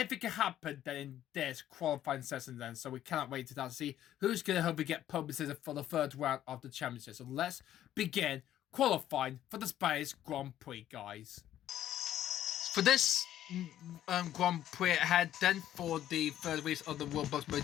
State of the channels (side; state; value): right; quieter; 11.9 dB